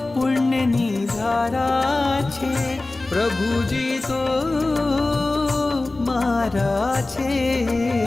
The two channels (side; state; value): right; quieter; 3.1 dB